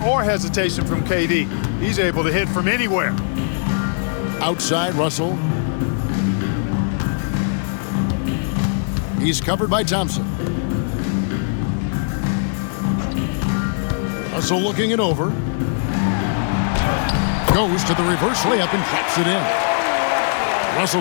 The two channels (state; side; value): silent; right; 66 dB below the other